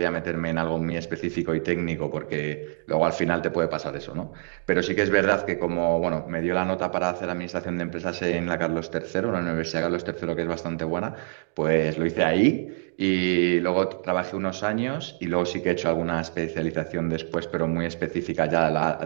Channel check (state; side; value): silent; left; digital silence